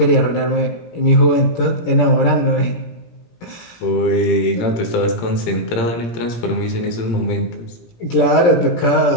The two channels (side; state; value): right; late; 17 ms